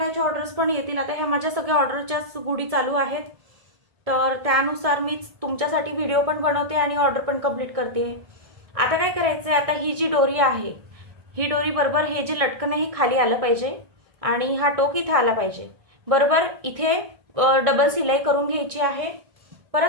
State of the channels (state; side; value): late; left; 1.6 ms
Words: याचे ऑर्डर्स पण येतील. आता ह्या माझ्या सगळ्या ऑर्डरच्याच गुढी चालू आहेत, तर त्यानुसार मी तुमच्यासाठी व्हिडिओ पण बनवते आणि ऑर्डर पण कंप्लीट करते. आता काय करायचं आहे, आता ही जी डोरी आहे ही डोरी बरोबर हे जे लटकन आहे खाली आलं पाहिजे आणि हा टोक इथे आला पाहिजे. बरोबर इथे डबल सिलाई करून घ्यायची आहे.